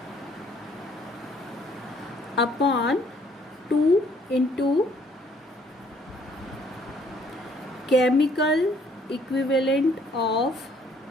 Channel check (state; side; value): normal; both; correlation 0.63